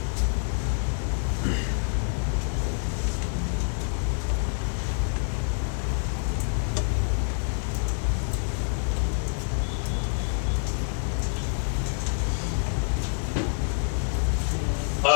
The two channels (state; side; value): silent; right; digital silence